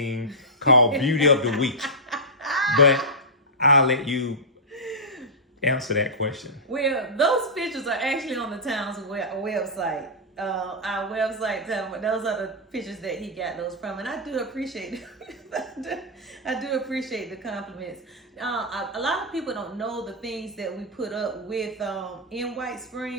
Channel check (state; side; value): normal; both; correlation -0.11